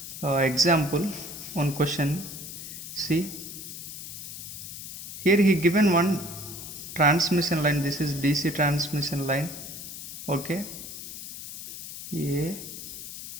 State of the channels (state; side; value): noise; left; hiss, 10 dB below the sound